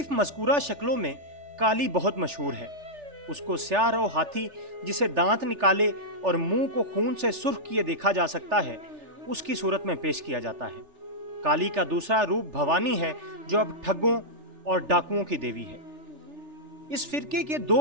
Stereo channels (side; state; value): left; late; 3.4 ms